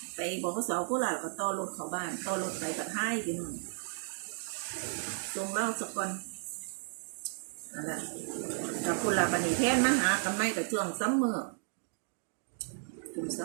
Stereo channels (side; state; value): left; silent; 55 dB below the other